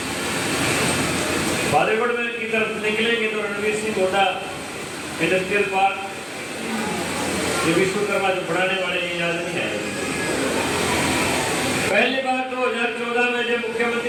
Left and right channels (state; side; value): identical; both; correlation 1.00